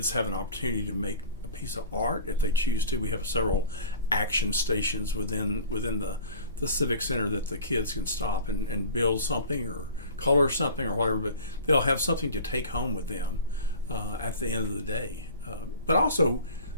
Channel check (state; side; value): inverted; both; correlation -0.41